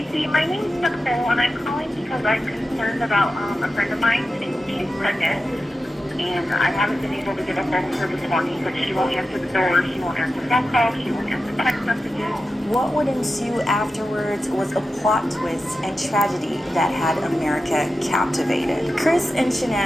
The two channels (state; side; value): normal; both; correlation 0.91